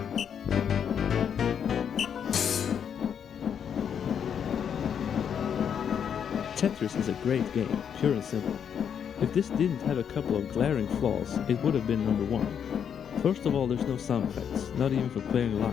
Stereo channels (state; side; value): quieter; right; 8.0 dB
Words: Tetris is a great game, pure and simple. If this didn't have a couple of glaring flaws, it would have been number 1. First of all, there's no sound effects, not even for clearing